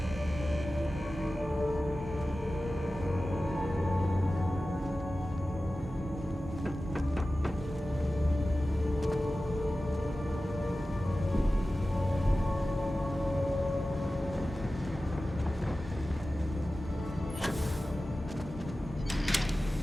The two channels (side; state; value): both; normal; correlation 0.95